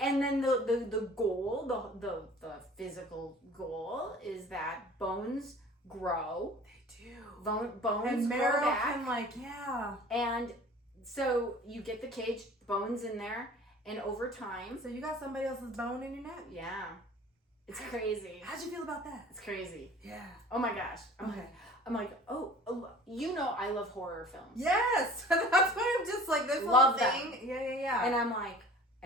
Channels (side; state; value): both; normal; correlation 0.45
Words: then the goal, the physical goal is that bones grow. They do. Bones and grow marrow back. can And so you get the cage, bones in there, and over time. So you got somebody else's bone in your neck? Yeah. It's crazy. How'd you feel about that? It's crazy. Yeah. Oh my gosh. Okay. I'm like, oh, I love horror films. Yes. That's why I'm just like this Love whole thing. Yeah. And I'm like,